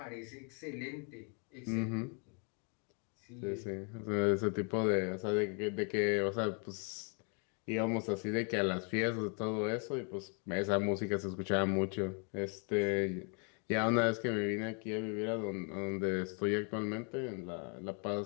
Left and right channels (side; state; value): right; quieter; 38.8 dB